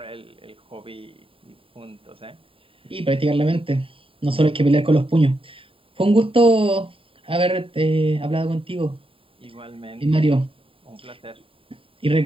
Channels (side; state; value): left; late; 0.26 ms